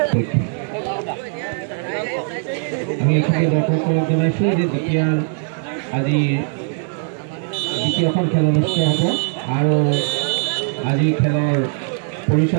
আমি এইখিনি দৰ্শকক জনাইছোঁ যে আজি দ্বিতীয়খন খেল অনুষ্ঠিত হ'ব আৰু আজি খেলৰ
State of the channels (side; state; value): left; silent; 62 dB below the other